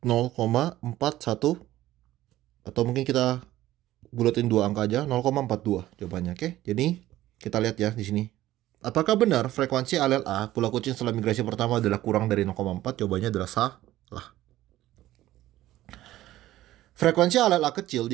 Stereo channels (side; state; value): left; quieter; 14.9 dB